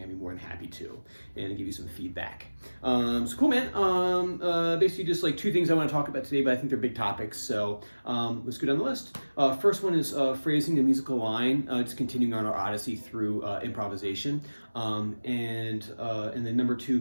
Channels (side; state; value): both; inverted; correlation -1.00